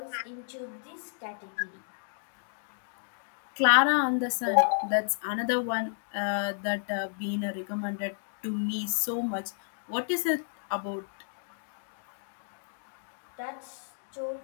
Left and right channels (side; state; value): right; silent; digital silence